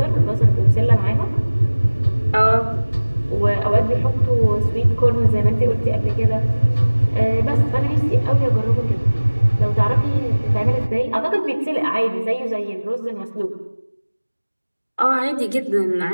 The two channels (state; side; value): inverted; both; correlation -1.00